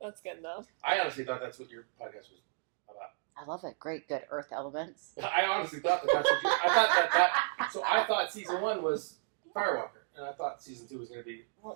good, though. I honestly thought that's what your podcast was about. I love it. Great, good earth elements. I honestly thought that's what I thought season 1 was Firewalker, and I thought season 2 was going to be.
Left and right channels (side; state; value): left; silent; digital silence